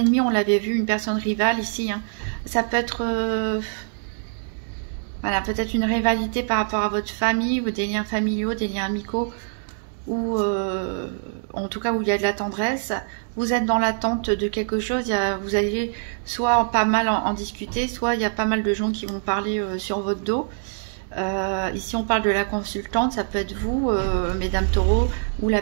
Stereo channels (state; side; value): silent; left; digital silence